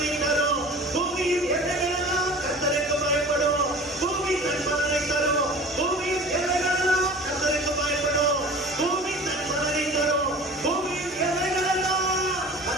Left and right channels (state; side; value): normal; both; correlation 0.40